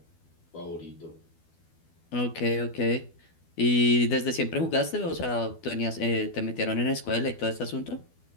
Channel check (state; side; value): late; right; 12 ms